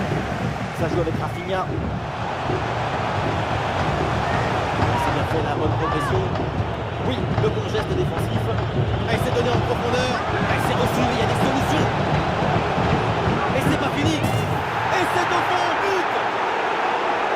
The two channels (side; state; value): both; identical; correlation 1.00